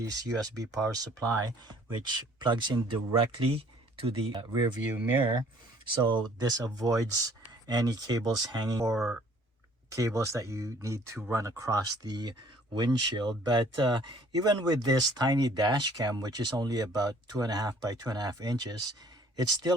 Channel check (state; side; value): normal; both; correlation 0.56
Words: USB power supply, which plugs in directly to the rear view mirror. So this avoids any cables hanging or cables that you need to run across the windshield. But even with this tiny dash cam, which is only about 2.5 by 2.5 inches, it's